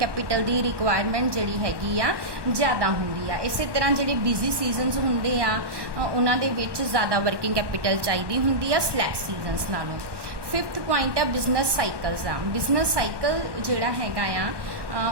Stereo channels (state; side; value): late; left; 1.1 ms